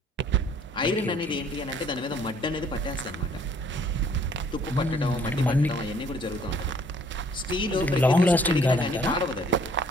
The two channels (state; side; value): normal; both; correlation 0.60